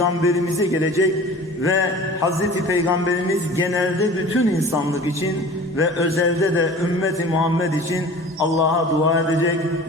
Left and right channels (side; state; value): both; normal; correlation 0.42